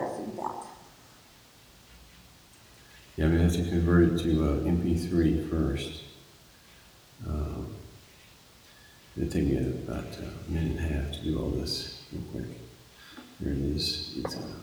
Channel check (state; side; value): identical; both; correlation 1.00